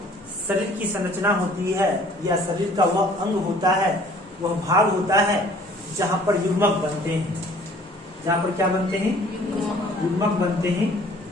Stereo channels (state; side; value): normal; both; correlation 0.54